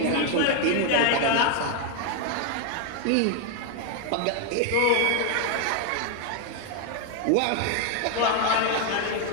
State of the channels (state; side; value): different; both; correlation 0.01